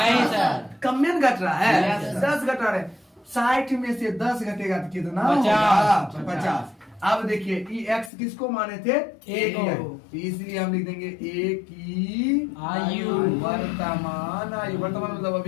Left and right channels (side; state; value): right; drops out; at 8.1 s